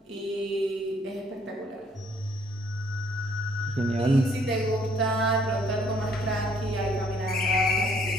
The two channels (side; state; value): both; normal; correlation 0.64